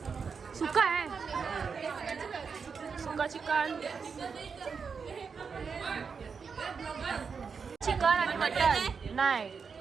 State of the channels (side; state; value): left; quieter; 5.7 dB